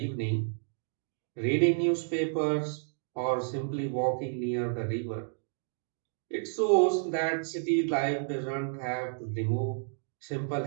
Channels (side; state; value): left; silent; digital silence